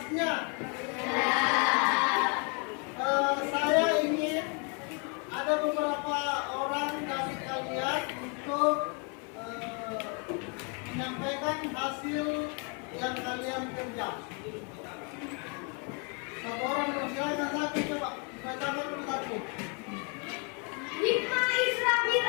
Saya ingin ada beberapa orang dari kalian untuk menyampaikan hasil yang kalian kerja. Satu orang silakan, satu coba bacakan dulu satu. Hikmah Isra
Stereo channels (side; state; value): right; quieter; 36.2 dB